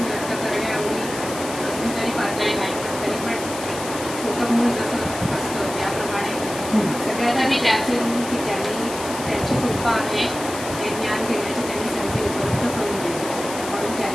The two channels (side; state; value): left; noise; hiss, 10 dB below the sound